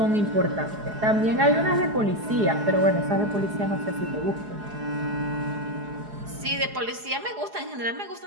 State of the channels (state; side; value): late; left; 4.8 ms